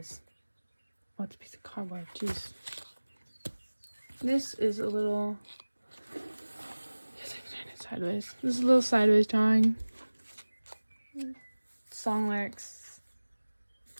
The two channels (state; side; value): inverted; both; correlation -1.00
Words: Oh, it's a piece of cardboard. Jeez. This is a little... Yes, I can turn it sideways. This is a little sideways drawing. Song lyrics.